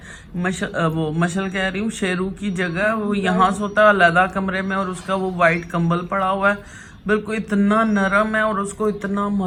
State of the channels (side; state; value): both; identical; correlation 1.00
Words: वो मशल कह रही हूँ, शेरू की जगह वो यहाँ सोता है अलग कमरे में, और उसका वो वाइट कंबल पड़ा हुआ है, बिल्कुल इतना नरम है। और उसको इतना